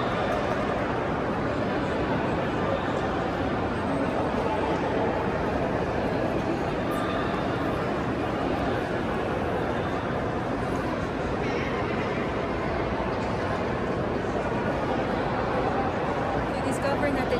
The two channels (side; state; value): both; identical; correlation 1.00